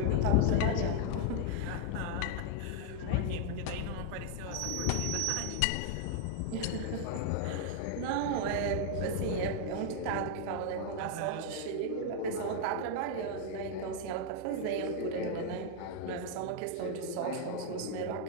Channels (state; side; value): different; both; correlation 0.00